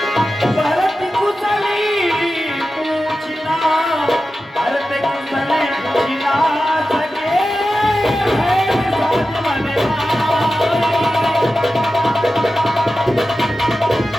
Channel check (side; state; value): both; normal; correlation 0.93